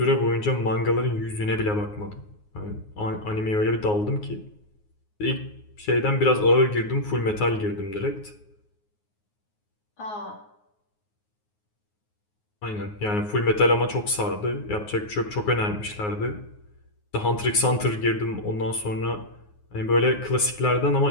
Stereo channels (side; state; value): right; late; 9.5 ms